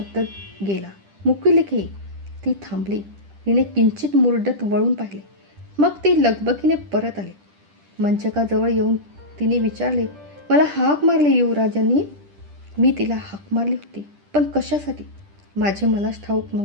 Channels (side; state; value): left; late; 10 ms